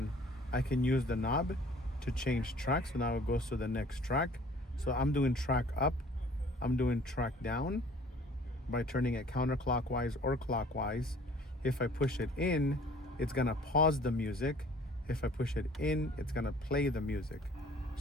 I can use the knob to change track. So now it goes to the next track. So I'm doing track up, I'm doing track down by turning it counterclockwise or clockwise. If I push it in, it's gonna pause the music. If I push it in, it's gonna play the music.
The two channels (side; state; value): both; normal; correlation 0.52